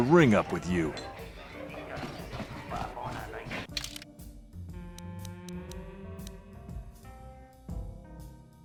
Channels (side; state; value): both; identical; correlation 1.00